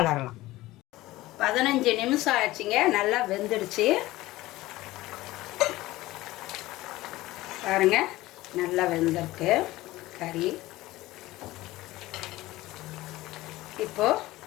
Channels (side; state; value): right; quieter; 17.9 dB